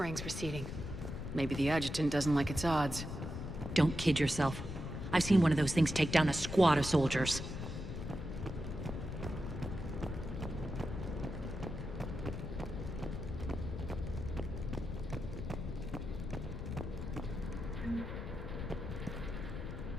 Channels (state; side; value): noise; left; rumble, 6 dB below the sound